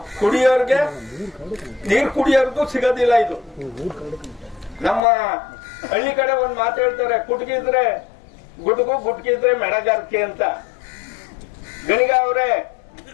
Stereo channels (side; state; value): right; drops out; at 5.0 s